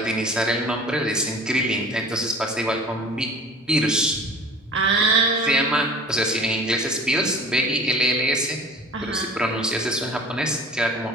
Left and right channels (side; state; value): both; normal; correlation 0.43